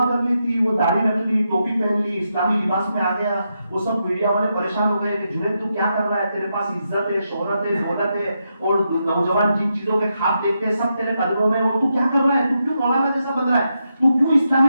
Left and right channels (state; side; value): inverted; both; correlation -0.84